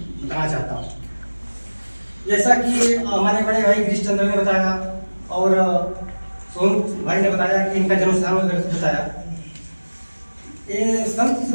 बताना चाहता हूँ। जैसा कि हमारे बड़े भाई गिरीश चंद्र ने बताया और सोनू भाई ने बताया कि इनका जन्म स्थान बताया। ये संत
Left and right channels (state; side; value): inverted; both; correlation -1.00